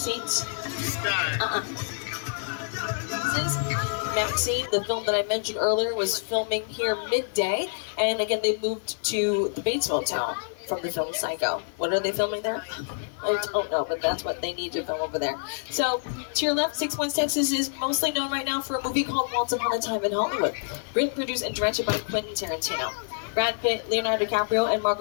This is Maxine. The film that I mentioned earlier was filming here midday, and again, they moved to the Bates Motel from the film Psycho. What are they filming there? I don't know, but that's what they need to film over there. So, to your left, 6 Points, Texas is mostly known right now for a movie called Once Upon a Time in Hollywood. Written, produced, and directed by Quentin Tarantino. Brad Pitt, Leonardo DiCaprio, and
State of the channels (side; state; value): right; silent; digital silence